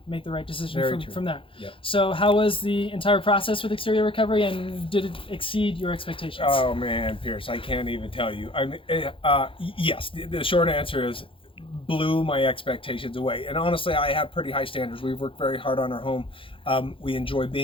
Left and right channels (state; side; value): late; right; 0.25 ms